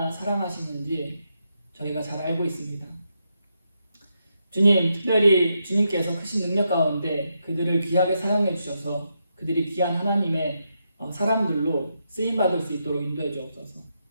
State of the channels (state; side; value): inverted; both; correlation -0.83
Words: 사랑하시는지 저희가 잘 알고 있습니다. 주님, 특별히 주님께서 크신 능력 가운데 그들을 귀하게 사용해 주셔서 그들이 귀한 하나님의 사람들로 쓰임받을 수 있도록 인도해 주옵소서.